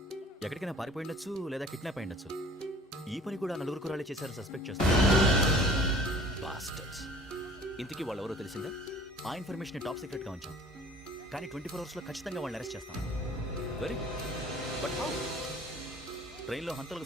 ఎక్కడికైనా పారిపోయిండొచ్చు, లేదా కిడ్నాప్ అయ్యుండొచ్చు. ఈ పని కూడా నలుగురు కురాలే చేశారు సస్పెక్ట్ చేస్తారు. బాస్టర్స్. ఇంతకీ వాళ్ళు ఎవరో తెలిసిందా? ఆ ఇన్ఫర్మేషన్ టాప్ సీక్రెట్గా ఉంచాం, కానీ 24 అవర్స్లో ఖచ్చితంగా వాళ్ళని అరెస్ట్ చేస్తాం. Very but how? ట్రైన్లో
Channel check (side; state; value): both; normal; correlation 0.50